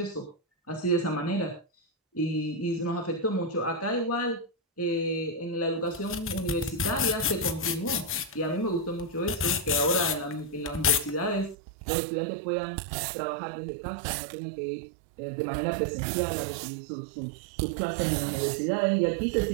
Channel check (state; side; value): drops out; left; at 11.6 s